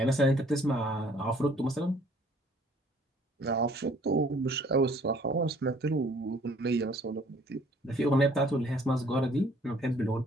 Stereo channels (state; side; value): normal; both; correlation 0.58